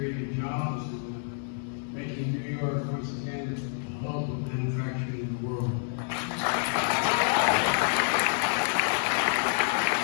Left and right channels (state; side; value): silent; right; 59 dB below the other